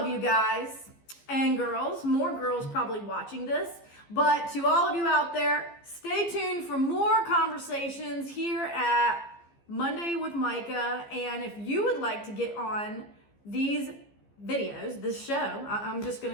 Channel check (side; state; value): right; late; 15 ms